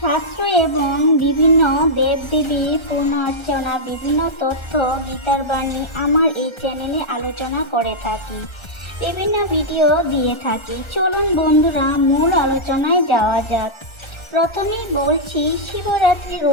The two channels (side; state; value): right; late; 1.3 ms